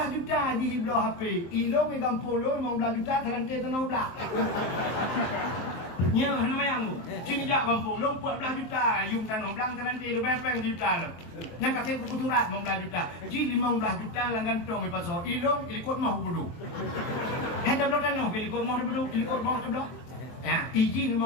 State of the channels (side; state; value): right; late; 23 ms